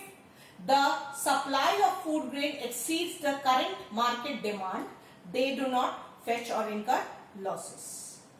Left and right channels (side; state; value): both; identical; correlation 1.00